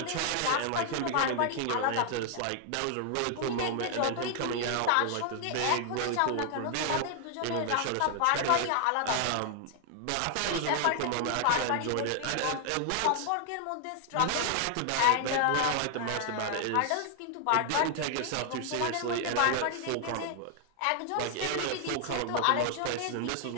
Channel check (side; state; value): both; different; correlation 0.00